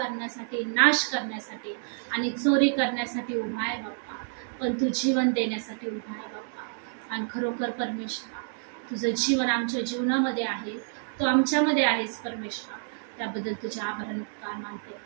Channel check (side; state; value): left; silent; digital silence